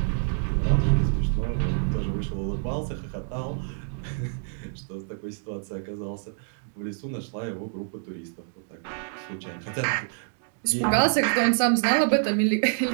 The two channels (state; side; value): silent; left; digital silence